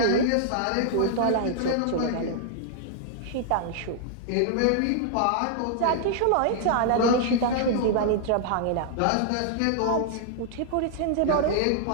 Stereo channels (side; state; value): both; different; correlation 0.00